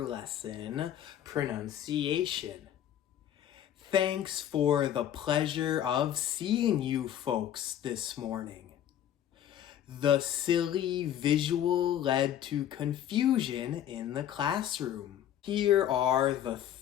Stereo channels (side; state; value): right; quieter; 10.8 dB